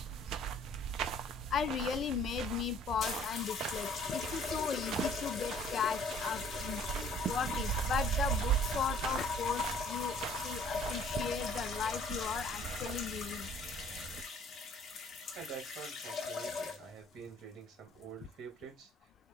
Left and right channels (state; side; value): normal; both; correlation 0.56